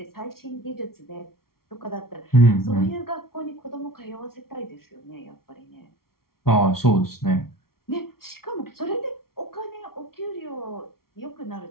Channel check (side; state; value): right; late; 0.94 ms